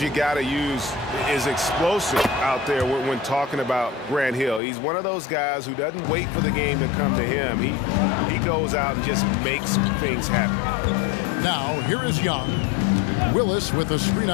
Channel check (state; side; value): drops out; right; at 4.6 s